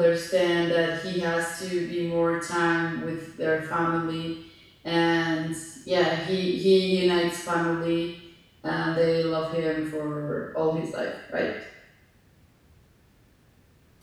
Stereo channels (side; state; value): both; identical; correlation 1.00